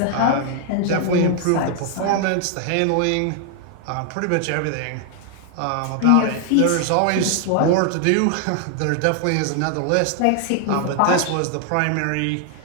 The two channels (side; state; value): both; different; correlation 0.00